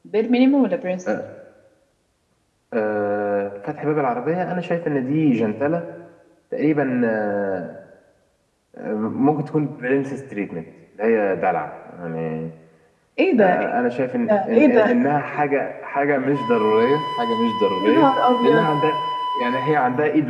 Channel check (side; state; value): both; identical; correlation 1.00